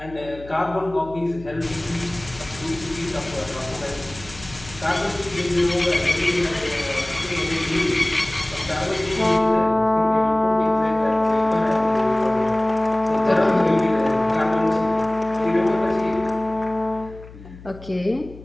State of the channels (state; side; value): noise; left; hum, 18 dB below the sound